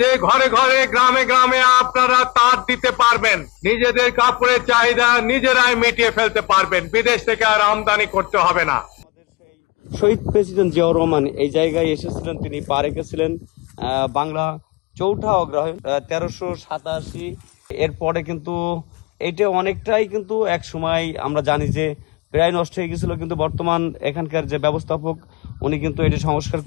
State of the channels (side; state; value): right; quieter; 25.0 dB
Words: ঘরে ঘরে গ্রামে গ্রামে আপনারা তাঁত দিতে পারবেন, নিজেদের কাপড়ের চাহিদা নিজেরাই মিটিয়ে ফেলতে পারবেন, বিদেশ থেকে আর আমদানি করতে হবে না। শহীদ প্রেসিডেন্ট জিয়াউর রহমান এই জায়গায় এসেছিলেন, তিনি পা রেখেছিলেন বাংলা চৌঠা অগ্রহায়ণ 1387। এরপরে কিন্তু এইটা অনেকটাই কিন্তু এক সময় আমরা জানি যে প্রায় নষ্ট হয়ে গেছিল, কিন্তু বর্তমান এখানকার যে ব্যবস্থাপক উনি কিন্তু এটা সংস্কার